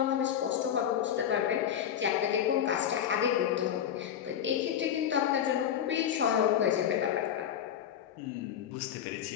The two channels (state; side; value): quieter; right; 9.5 dB